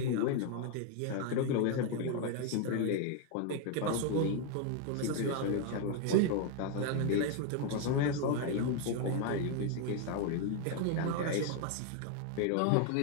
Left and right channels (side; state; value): both; different; correlation 0.01